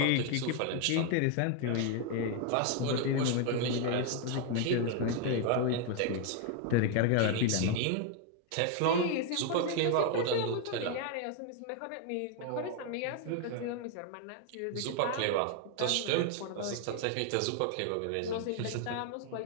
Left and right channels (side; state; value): both; different; correlation 0.00